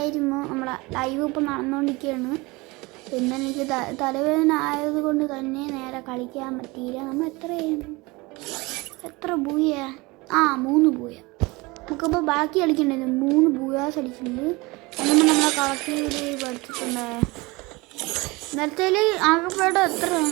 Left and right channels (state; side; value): quieter; left; 24.0 dB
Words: നമ്മളെ ലൈവ് ഇപ്പോൾ നടന്നുകൊണ്ടിരിക്കുകയാണ്. പിന്നെ എനിക്ക് തലവേദന ആയതുകൊണ്ട് തന്നെ നേരെ കളിക്കാൻ പറ്റിയില്ല. നമ്മൾ എത്ര ബൂയ? 3 ബൂയ. നമുക്കിപ്പോൾ ബാക്കി കളിക്കണ്ടായിരുന്നു. 3 ബൂയാസ് അടിച്ചിട്ടുണ്ട്. എന്നും നമ്മളെ കളക്ടീവിൽ പഠിച്ചിട്ടുണ്ട്. നേരത്തെ ആകെപ്പാടെ